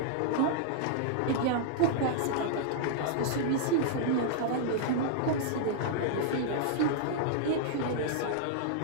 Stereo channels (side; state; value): both; different; correlation -0.01